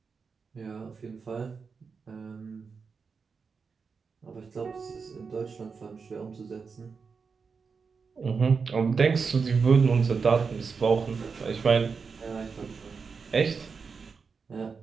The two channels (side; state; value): left; quieter; 5.3 dB